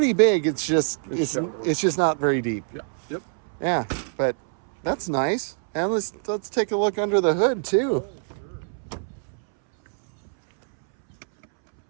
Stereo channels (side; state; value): left; silent; 62 dB below the other